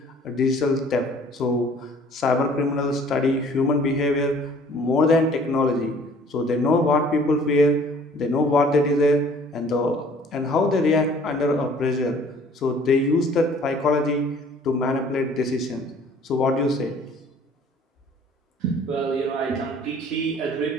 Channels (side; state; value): both; normal; correlation 0.54